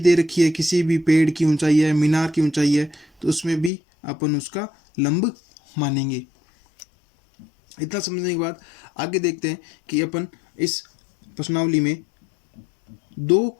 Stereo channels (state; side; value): drops out; right; at 3.7 s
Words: दे रखी है, किसी भी पेड़ की ऊंचाई है, मीनार की ऊंचाई है, तो उसमें भी अपन उसका लंब मानेंगे। इतना समझने के बाद आगे देखते हैं कि अपन इस प्रश्नावली में 2